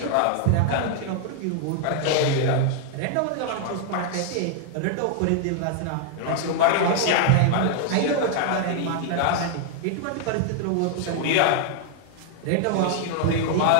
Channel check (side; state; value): both; different; correlation 0.00